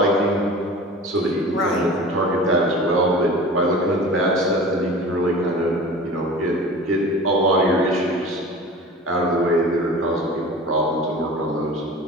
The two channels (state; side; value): normal; both; correlation 0.38